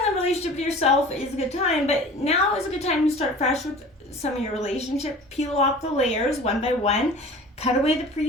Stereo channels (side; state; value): both; normal; correlation 0.42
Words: a relationship with yourself is a good time, but now is a good time to start fresh with some of your relationship. Peel off the layers one by one, cut away the